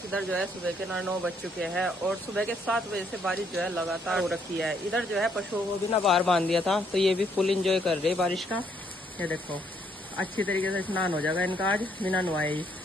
इधर जो है सुबह के 9 बज चुके हैं और सुबह के 7 बजे से बारिश जो है लगातार हो रखी है। इधर जो है पशुओं को भी ना बाहर बांध दिया था, तो ये भी फुल एंजॉय कर रहे हैं बारिश का। ये देखो, अच्छी तरीके से स्नान हो जाएगा इनका आज बिना नहाए ही,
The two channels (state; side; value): normal; both; correlation 0.70